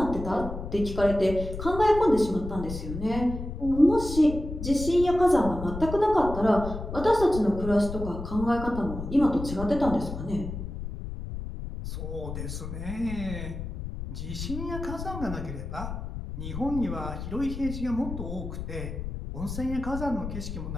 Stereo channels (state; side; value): noise; left; rumble, 7 dB below the sound